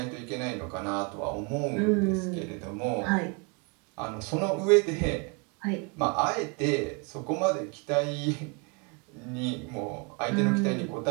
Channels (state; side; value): quieter; left; 32.5 dB